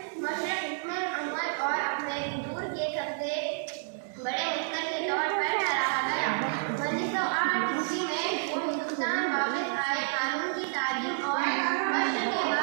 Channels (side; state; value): left; silent; 58 dB below the other